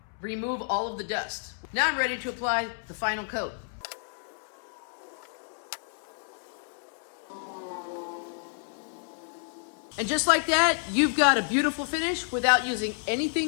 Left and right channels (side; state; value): right; silent; 58 dB below the other